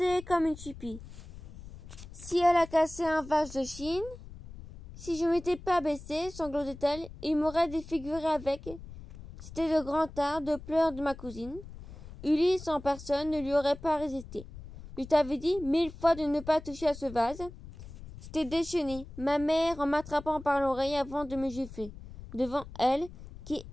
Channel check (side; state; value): left; noise; rumble, 15 dB below the sound